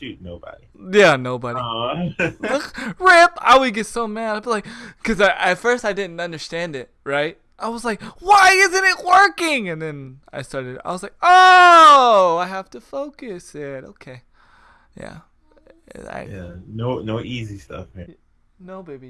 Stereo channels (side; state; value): both; identical; correlation 1.00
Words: Nobody. Yeah, nobody. Rip. I would get so mad. I'd be like, because at first I didn't understand it, right? I was like, why isn't it working? And then I was like, oh, I have to focus it. Okay. Yeah. No easy stuff, man. No,